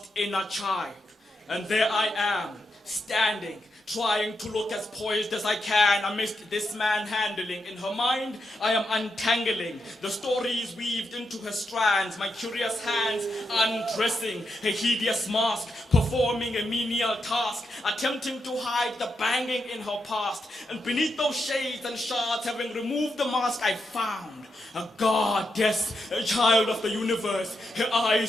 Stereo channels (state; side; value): normal; both; correlation 0.84